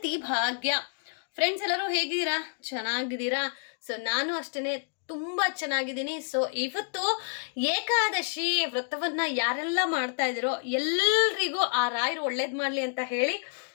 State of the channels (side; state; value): right; silent; digital silence